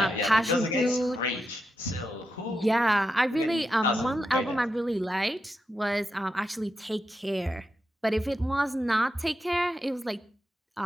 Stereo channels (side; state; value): both; normal; correlation 0.87